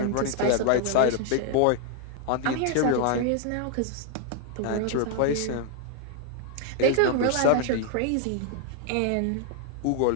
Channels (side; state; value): both; different; correlation 0.00